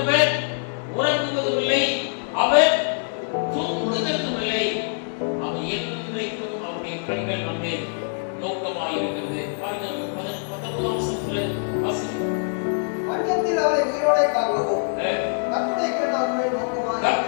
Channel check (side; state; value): right; silent; digital silence